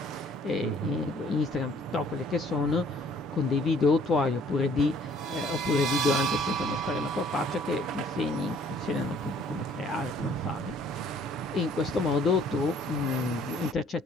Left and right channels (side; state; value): both; normal; correlation 0.58